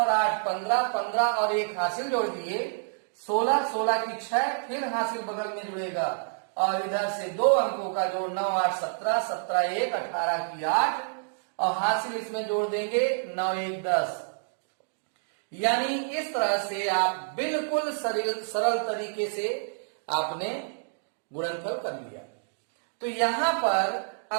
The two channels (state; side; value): silent; left; digital silence